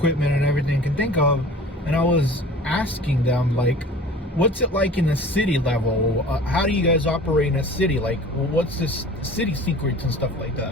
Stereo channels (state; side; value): normal; both; correlation 0.43